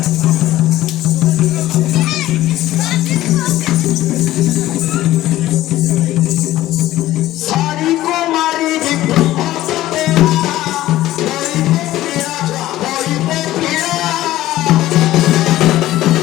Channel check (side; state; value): right; quieter; 15.2 dB